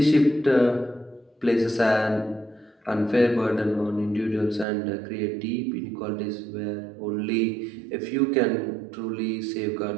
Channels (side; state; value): left; drops out; at 4.7 s